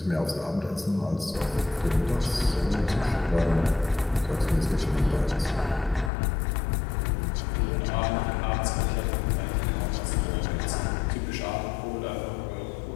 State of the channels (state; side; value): drops out; right; at 6.1 s